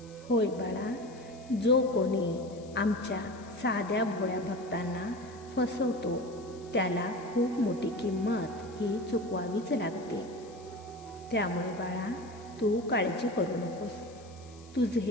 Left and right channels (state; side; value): noise; left; hiss, 24 dB below the sound